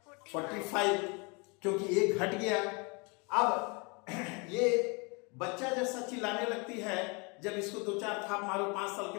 45, क्योंकि एक घट गया। अब ये बच्चा जैसा चिल्लाने लगती है, जब इसको 2-4 थाप मारो 5 साल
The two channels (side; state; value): right; quieter; 30.8 dB